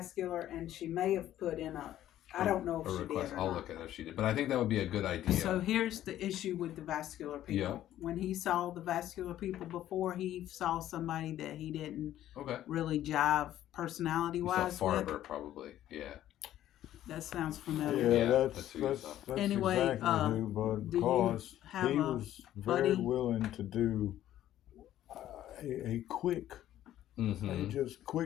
and she may have put in I don't know if a she request. did or I'll not. look at it if she did, but I think that would be a good idea. So here's the issue with the vascular people. Yeah. When he saw the vascular people before, he saw somebody that he didn't Okay. really jive personality You saw wise Farber with. probably. Yeah. That sounds familiar. Yeah, Yeah, that's that's who you saw. Anyway, exactly who, but do you because have he a was very buddy? willing to do a quick, he just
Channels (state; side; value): quieter; right; 12.6 dB